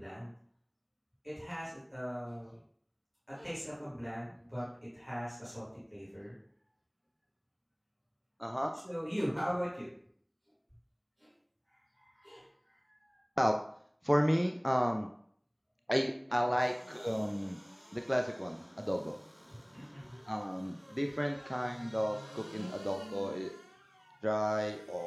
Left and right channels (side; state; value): both; identical; correlation 1.00